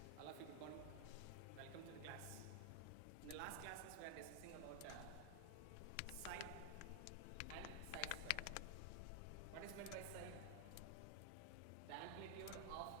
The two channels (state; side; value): different; both; correlation 0.00